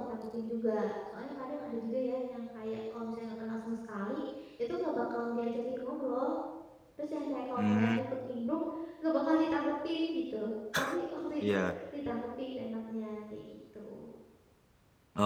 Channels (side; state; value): both; identical; correlation 1.00